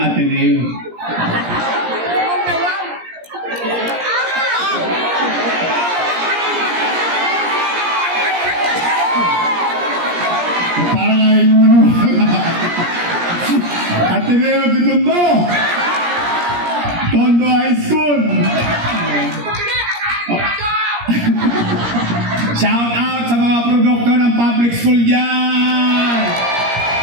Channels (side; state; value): left; late; 17 ms